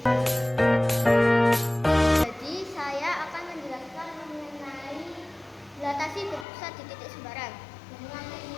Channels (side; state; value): right; drops out; at 6.5 s